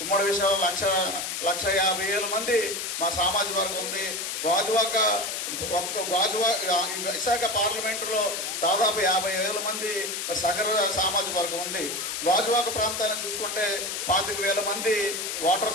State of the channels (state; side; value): noise; left; hiss, 3 dB below the sound